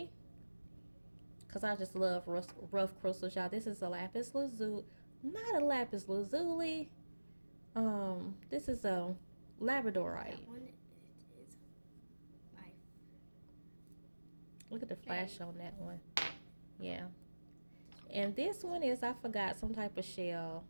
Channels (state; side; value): inverted; both; correlation -1.00